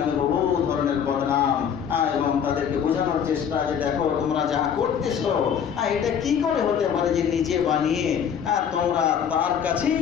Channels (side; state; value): right; quieter; 8.0 dB